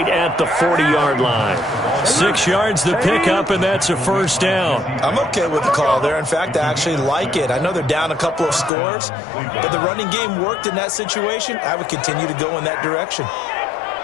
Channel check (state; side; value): drops out; right; at 8.7 s